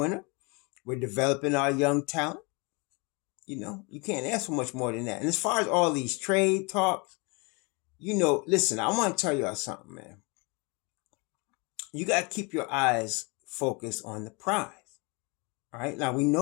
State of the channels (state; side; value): quieter; right; 29.8 dB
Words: We're developing our young talent. You can't ask for much more than that. And as far as all these trade talks, Listen, I want to tell y'all something, man. You got to keep your eyes focused on the prize. All right. Now we